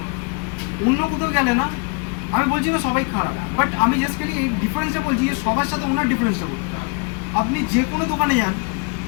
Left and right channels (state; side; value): quieter; right; 32.8 dB